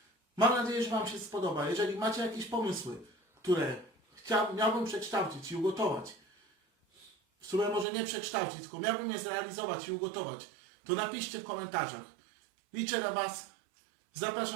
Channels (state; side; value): drops out; left; at 7.9 s